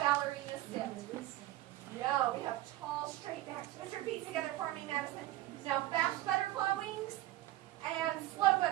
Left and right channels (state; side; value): quieter; left; 15.5 dB